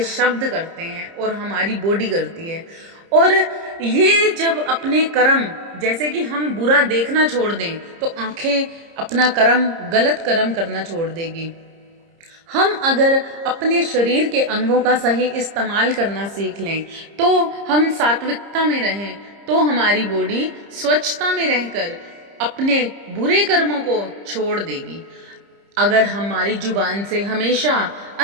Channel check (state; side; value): late; left; 30 ms